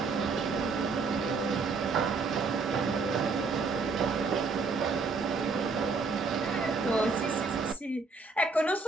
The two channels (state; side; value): quieter; left; 4.3 dB